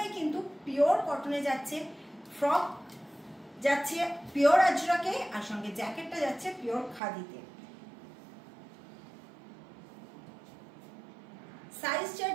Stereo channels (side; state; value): left; drops out; at 7.0 s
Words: কিন্তু পিওর কটনে যাচ্ছে। ফ্রক যাচ্ছে পিওর আজরাকে, আর সঙ্গে জ্যাকেটটা যাচ্ছে পিওর খাদিতে। সাইজ